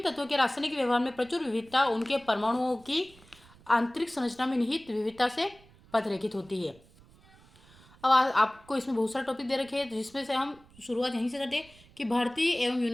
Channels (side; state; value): right; noise; rumble, 26 dB below the sound